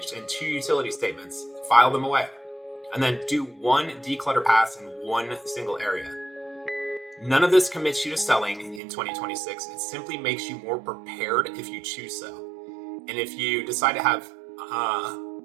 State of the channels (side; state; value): left; drops out; at 8.8 s